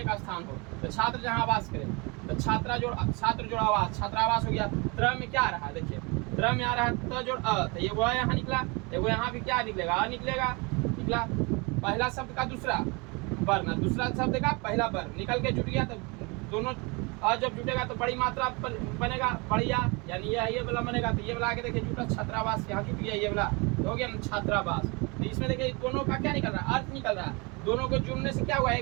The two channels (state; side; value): quieter; left; 28.9 dB